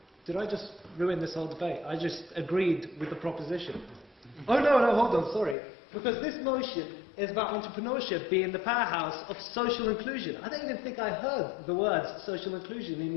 did I just ruin this whole debate? I just agreed with the proposition. Oh no, hold on, sorry, because this motion is about entrepreneurship being the powerhouse of social inclusion. I don't even think I heard the words social inclusion in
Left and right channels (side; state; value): right; drops out; at 5.6 s